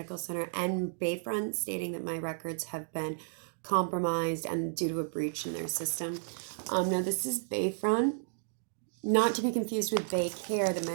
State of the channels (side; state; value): left; silent; digital silence